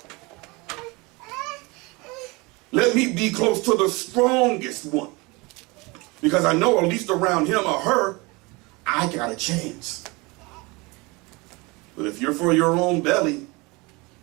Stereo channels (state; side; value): quieter; left; 25.6 dB